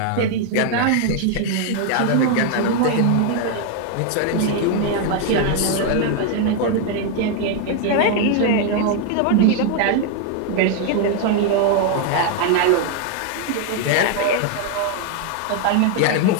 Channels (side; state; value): both; different; correlation 0.01